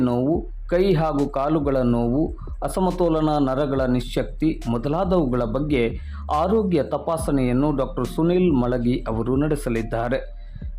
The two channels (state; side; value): identical; both; correlation 1.00